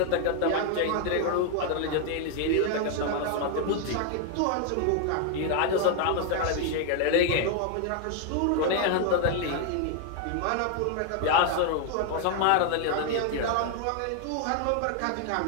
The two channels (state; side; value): different; both; correlation 0.00